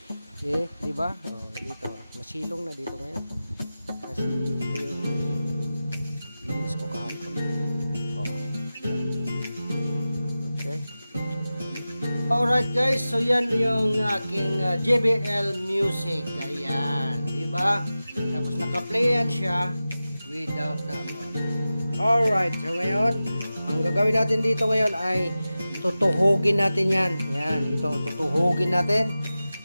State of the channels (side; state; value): both; inverted; correlation -0.95